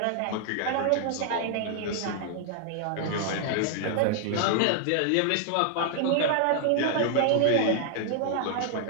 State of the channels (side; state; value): both; different; correlation 0.00